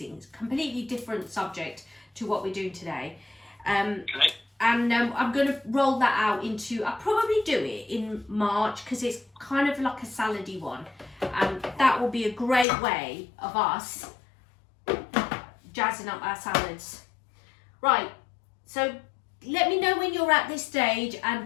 It's a completely different subject to what we're doing today. Okay. And I'm going to roll that out into, I'll probably do it in March because it's kind of like a salady one. And that will be a great way of us jazzing up our salads. Right, so let me know when you're at this stage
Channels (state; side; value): drops out; right; at 12.7 s